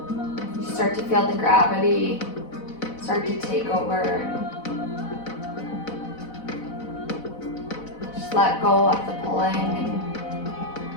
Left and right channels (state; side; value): late; right; 4.0 ms